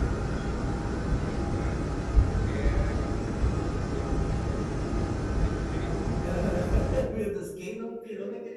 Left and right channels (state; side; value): identical; both; correlation 1.00